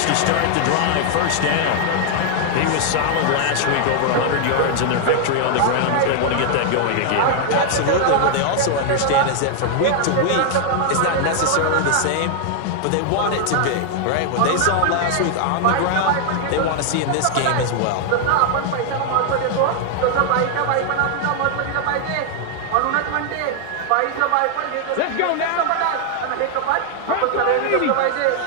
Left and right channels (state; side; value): different; both; correlation 0.00